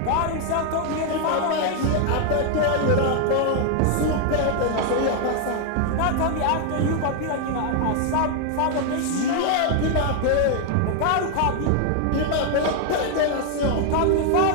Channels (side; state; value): both; different; correlation 0.00